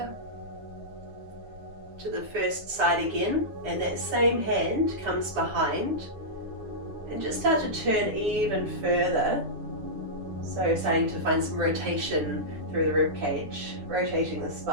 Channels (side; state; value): left; late; 9.9 ms